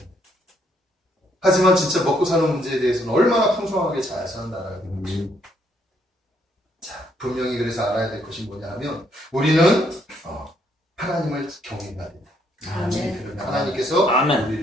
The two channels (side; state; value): both; normal; correlation 0.71